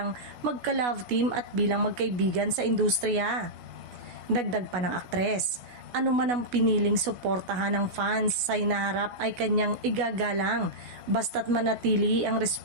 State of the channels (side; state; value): left; late; 16 ms